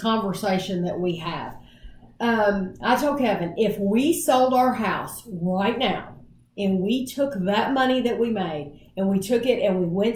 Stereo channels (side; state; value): both; identical; correlation 1.00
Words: conversation that we have. I told Kevin, if we sold our house right now and we took that money that we made and we took it and we went